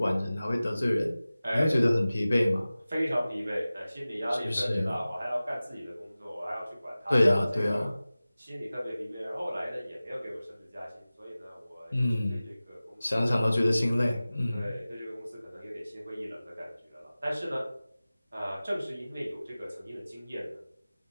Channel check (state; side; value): inverted; both; correlation -0.97